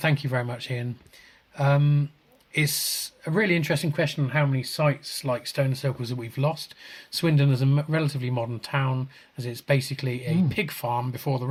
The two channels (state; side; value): identical; both; correlation 1.00